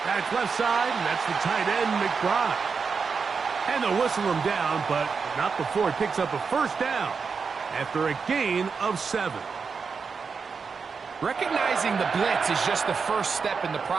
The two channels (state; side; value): quieter; left; 5.4 dB